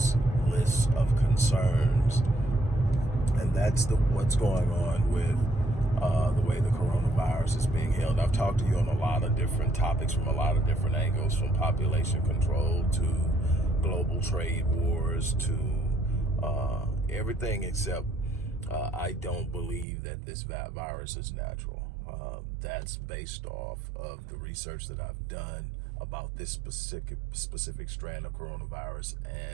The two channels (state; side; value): drops out; left; at 19.9 s